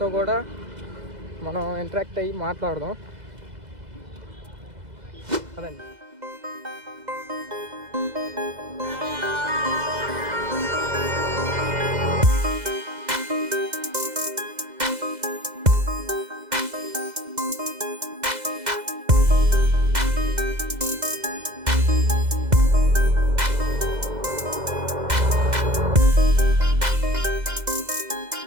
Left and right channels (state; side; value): late; left; 2.0 ms